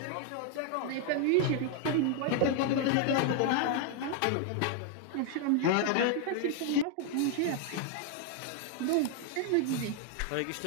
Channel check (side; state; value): both; different; correlation 0.00